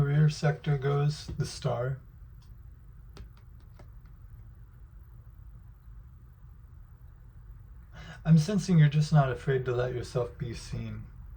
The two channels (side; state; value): both; identical; correlation 1.00